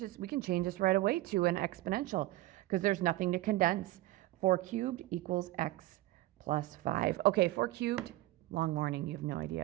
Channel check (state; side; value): quieter; left; 17.2 dB